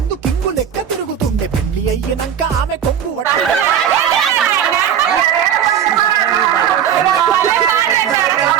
కింగు లెక్క తిరుగుతుండే పెండ్లి అయ్యినంక ఆమె కొంగు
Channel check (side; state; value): left; quieter; 9.0 dB